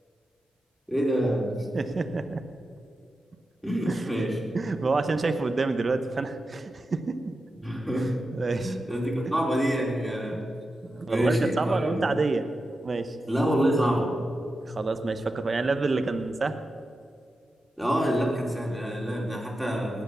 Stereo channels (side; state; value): both; normal; correlation 0.90